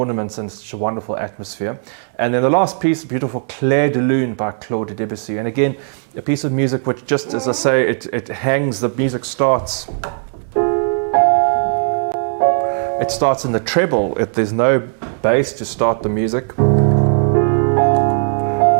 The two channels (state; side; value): silent; left; digital silence